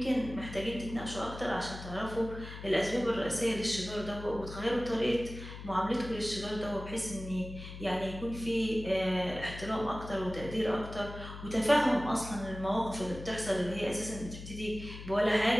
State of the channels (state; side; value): noise; left; hum, 11 dB below the sound